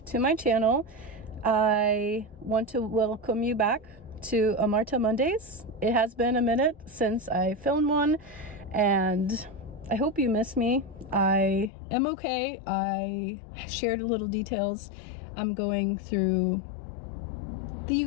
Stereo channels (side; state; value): right; drops out; at 11.7 s